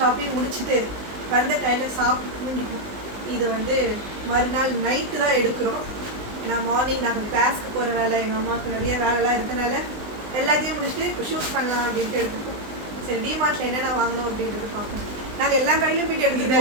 முடிச்சுட்டு வந்த கையில் சாப்பிட்டு தூங்கிட்டோம். இது வந்து மறுநாள் நைட்டு தான் எடுக்கிறோம். நான் மார்னிங் நாங்கள் கிளாஸ்க்கு போகிற வேலை, எங்கள் அம்மாவுக்கு நிறைய வேலைலாம் இருக்கனால எல்லாத்தையும் முடிச்சுட்டு இப்போ ஷூட் பண்ணலாம் அப்படின்ட்டு எடுத்துப்போம். சரி, டிமார்ட்டில் என்னென்ன வாங்கணும் அப்படின்றது பார்ப்போம். நாங்கள் எல்லா கடையிலும் போயிட்டு எடுத்து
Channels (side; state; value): left; late; 19 ms